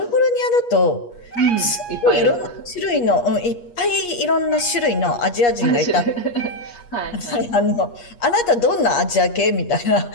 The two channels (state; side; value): late; right; 8.4 ms